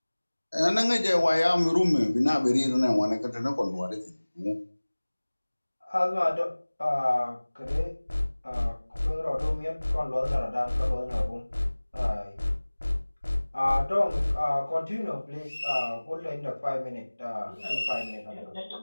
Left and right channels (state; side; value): inverted; both; correlation -1.00